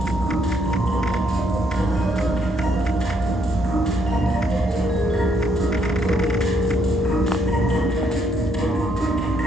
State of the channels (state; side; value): normal; both; correlation 0.72